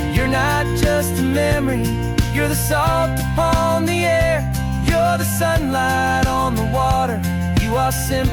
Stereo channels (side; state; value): both; identical; correlation 1.00